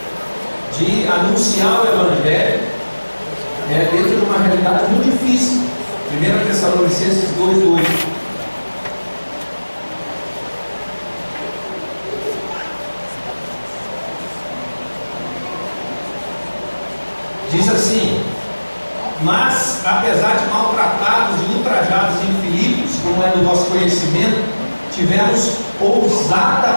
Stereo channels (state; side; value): inverted; both; correlation -1.00